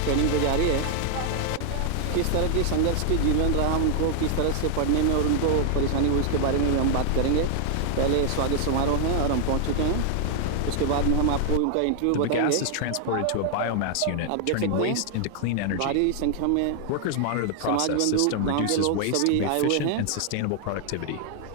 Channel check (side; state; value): both; different; correlation 0.00